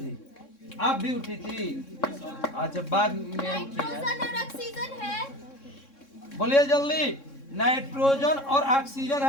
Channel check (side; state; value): right; late; 3.6 ms